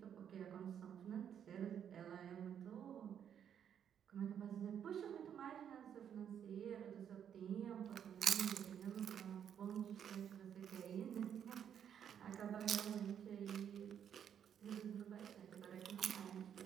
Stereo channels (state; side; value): quieter; left; 8.8 dB